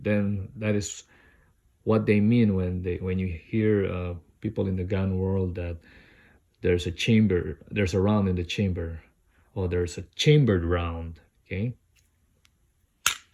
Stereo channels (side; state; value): both; identical; correlation 1.00